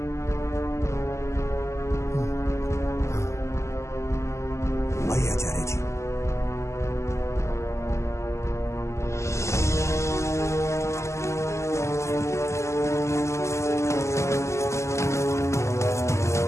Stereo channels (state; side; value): late; right; 0.13 ms